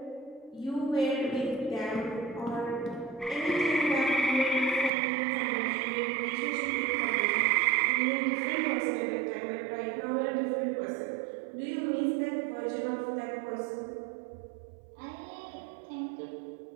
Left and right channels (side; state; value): left; drops out; at 4.9 s